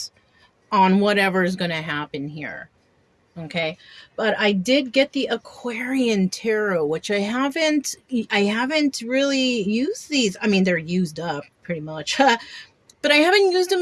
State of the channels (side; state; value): both; identical; correlation 1.00